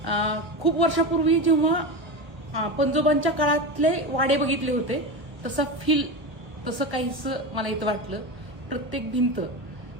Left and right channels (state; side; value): late; left; 1.5 ms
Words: खूप वर्षापूर्वी जेव्हा पंजोबांच्या काळातले वाडे बघितले होते तसा फील तसं काहीच मला इथं वाटलं। प्रत्येक भिंत